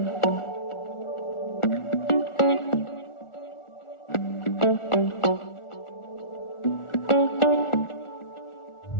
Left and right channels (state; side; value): late; right; 1.4 ms